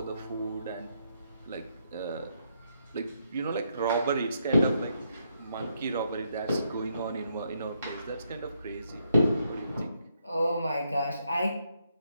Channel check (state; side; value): inverted; both; correlation -0.77